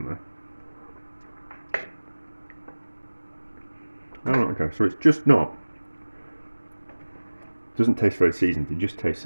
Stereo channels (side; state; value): both; inverted; correlation -1.00